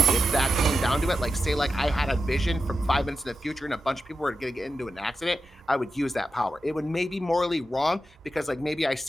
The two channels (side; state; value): both; normal; correlation 0.90